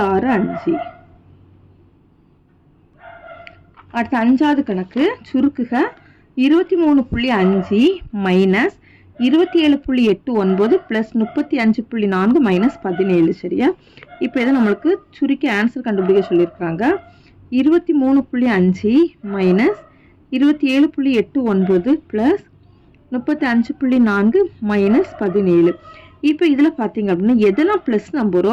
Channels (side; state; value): both; identical; correlation 1.00